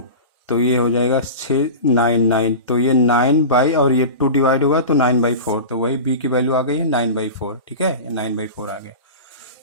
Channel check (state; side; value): inverted; both; correlation -0.30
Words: तो ये हो जाएगा 9 तो ये 9 और ये 2 डिवाइड होगा तो 9/4, तो वही b की वैल्यू आ गई है 9/4। ठीक है, ये 9/4 आ गया।